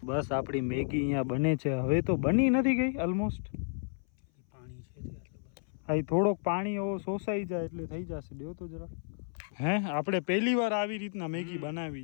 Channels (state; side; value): silent; right; 56 dB below the other